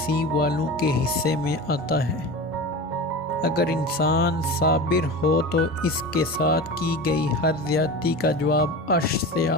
والوں کے حصے میں آتا ہے۔ اگر انسان صابر ہو تو اس کے ساتھ کی گئی ہر زیادتی کا جواب عرش سے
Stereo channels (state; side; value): normal; both; correlation 0.30